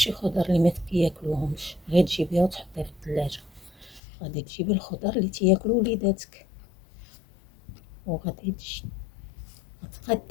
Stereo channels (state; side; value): drops out; right; at 4.0 s